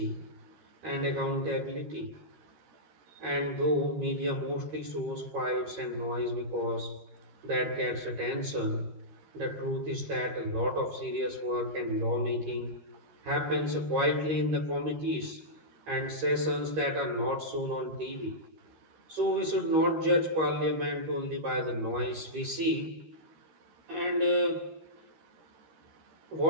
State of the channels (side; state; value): left; late; 13 ms